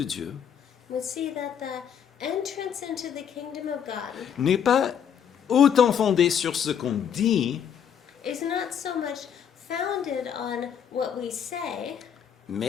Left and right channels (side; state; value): right; quieter; 8.3 dB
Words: Dieu We see that the entrance into the kingdom of God n'est pas autant fondée sur ce qu'on dit, is not so much founded on what we say,